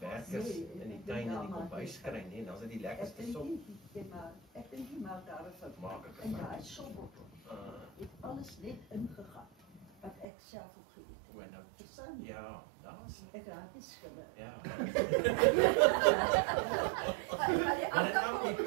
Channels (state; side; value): drops out; left; at 10.2 s